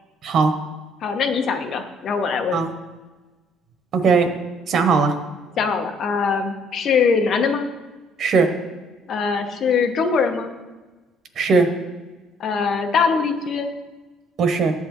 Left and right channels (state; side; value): normal; both; correlation 0.63